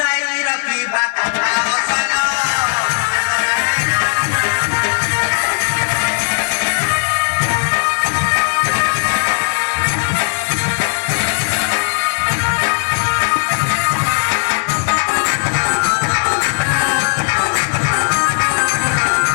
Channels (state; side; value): silent; right; 69 dB below the other